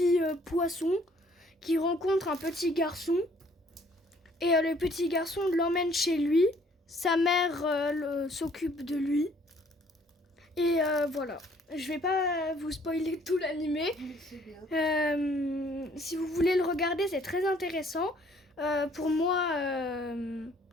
poisson qui rencontre un petit garçon. Et le petit garçon l'emmène chez lui. Sa mère s'occupe de lui. Et voilà. Je vais pas vous spoiler tout l'animé. Si vous voulez le regarder, c'est très intéressant. Pour moi,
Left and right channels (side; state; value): both; normal; correlation 0.60